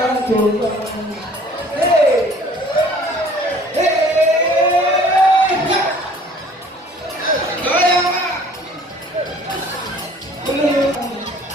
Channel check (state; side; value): normal; both; correlation 0.52